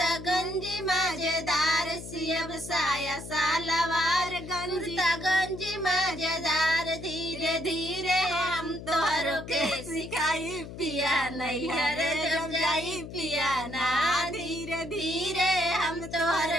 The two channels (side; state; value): left; noise; hum, 11 dB below the sound